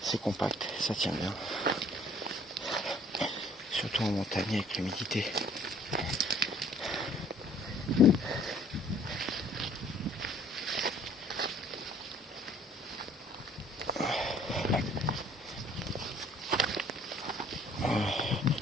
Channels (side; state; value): both; normal; correlation 0.57